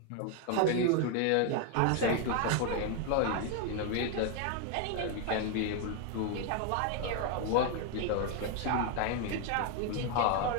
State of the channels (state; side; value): different; both; correlation 0.01